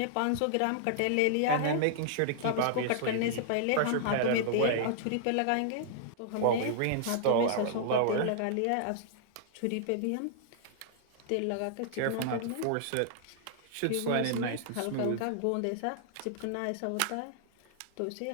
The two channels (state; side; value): different; both; correlation -0.01